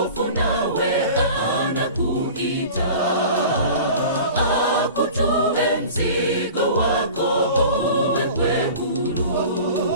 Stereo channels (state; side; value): inverted; both; correlation -0.39